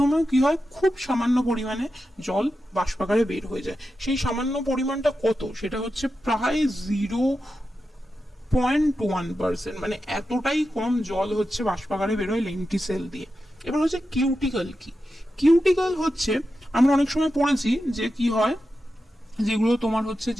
কি হয়, খুব সামান্য পরিমাণে জল বাষ্পাকারে বের হয়ে যায়। সেই সামান্য পরিমাণটা কত, সেটা হচ্ছে প্রায় 0.1%, মানে এতটাই কম জল হচ্ছে বাষ্পাকারে বের হয় লেন্টিসেল দিয়ে। এবার হচ্ছে কিউটিকল কি, কিউটিকল হচ্ছে আমরা অনেক সময় পড়েছি যে কি হয়, যেগুলো তোমার হচ্ছে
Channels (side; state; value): both; normal; correlation 0.90